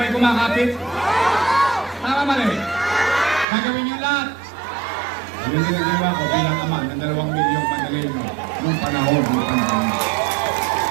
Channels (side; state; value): left; drops out; at 3.5 s